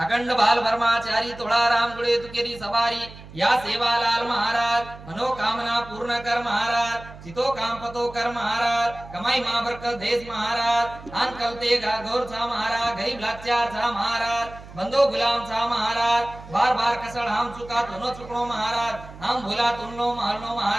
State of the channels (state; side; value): noise; right; hum, 17 dB below the sound